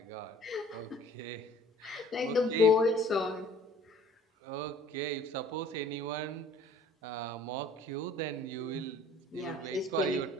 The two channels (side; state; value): both; normal; correlation 0.51